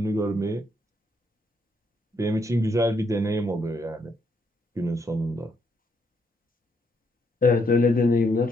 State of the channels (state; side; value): normal; both; correlation 0.74